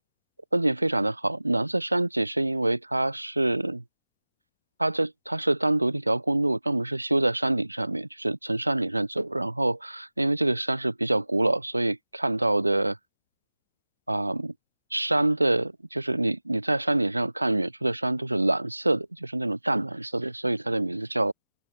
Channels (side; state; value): both; inverted; correlation -1.00